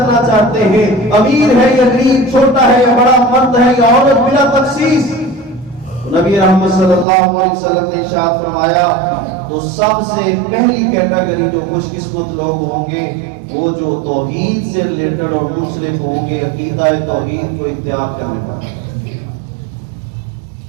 چاہتے ہیں، امیر ہے یا غریب، چھوٹا ہے یا بڑا، مرد ہے یا عورت، بلا تخصیص، تو نبی رحمت صلی اللہ علیہ وسلم نے ارشاد فرمایا تو سب سے پہلی کیٹیگری جو خوش قسمت لوگ ہوں گے وہ جو توحید سے ریلیٹڈ اور منسلک ہوں گے، عقیدہ توحید کو اختیار کرنے والے۔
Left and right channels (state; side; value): drops out; left; at 7.1 s